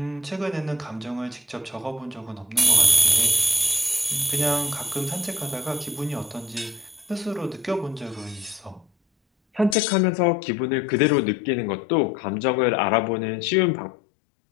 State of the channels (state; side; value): drops out; right; at 9.8 s